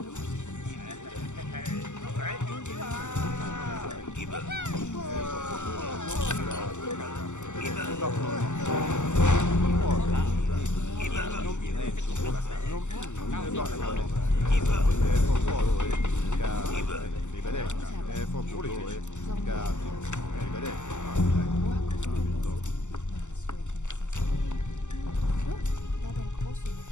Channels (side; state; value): right; late; 0.84 ms